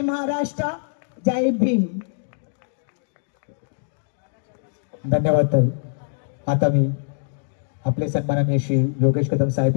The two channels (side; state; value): right; silent; digital silence